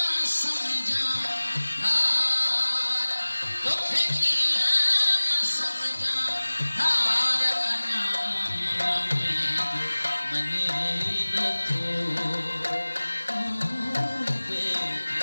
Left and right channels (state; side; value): inverted; both; correlation -1.00